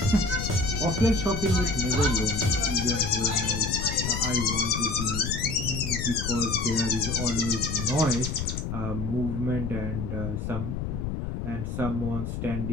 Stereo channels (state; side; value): noise; left; rumble, 4 dB below the sound